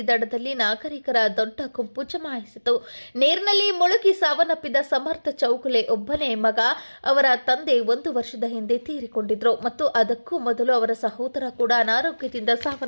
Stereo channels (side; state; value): both; inverted; correlation -1.00